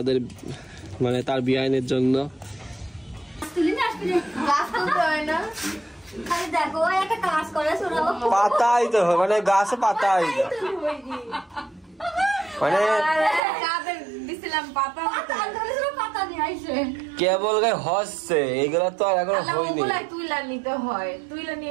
মানে তার বিয়ানের জন্য। পাতাই তো মানে গাছে পাতাই মানে কেবল গায়ে হচ্ছে, এগুলা তো আর এখন হয়নি। তুইলা নিতে হয়, তুইলা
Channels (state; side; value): drops out; left; at 13.4 s